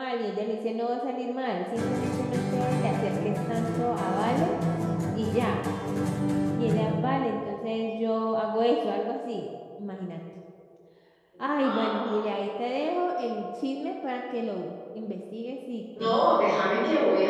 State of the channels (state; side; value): identical; both; correlation 1.00